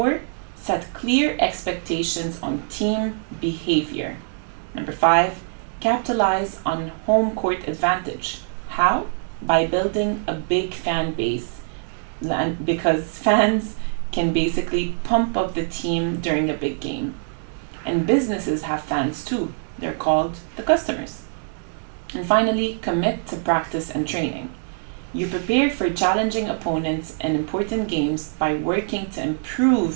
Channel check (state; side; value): silent; left; digital silence